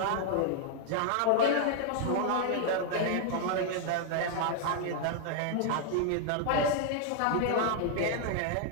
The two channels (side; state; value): both; different; correlation 0.00